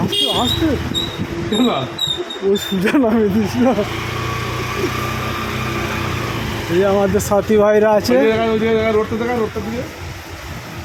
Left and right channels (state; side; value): identical; both; correlation 1.00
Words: আসতে ও সুজা নামে দিস না এই আমাদের সাথী ভাইরা আছে রোডটা দেখা রোডটা দিয়ে